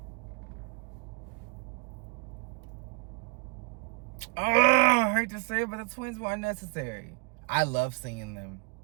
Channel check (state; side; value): quieter; left; 33.2 dB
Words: I hate to say it, but the twins were unnecessary. I love seeing them.